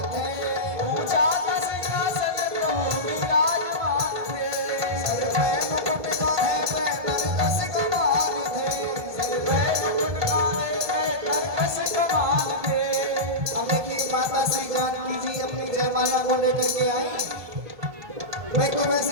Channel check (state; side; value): late; left; 1.7 ms